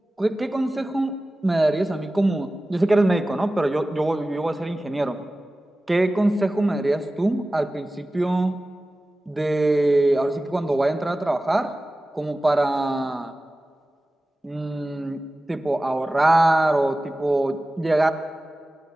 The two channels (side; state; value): both; normal; correlation 0.96